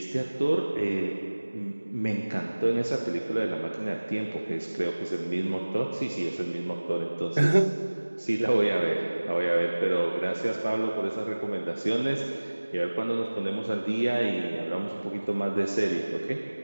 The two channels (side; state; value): both; inverted; correlation -1.00